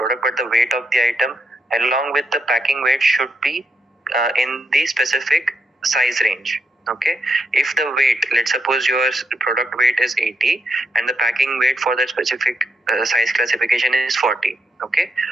but the weight of the item along with the packing weight should be in the specific size range. Okay, if the weight, let's suppose your product weight is 80 and the packing weight for that specific size classification is 40. Okay,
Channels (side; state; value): both; normal; correlation 0.80